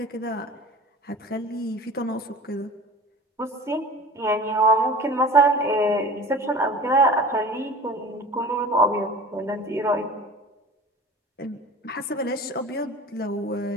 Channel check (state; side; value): normal; both; correlation 0.40